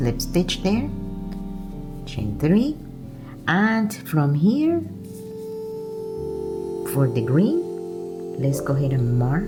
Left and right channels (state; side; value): identical; both; correlation 1.00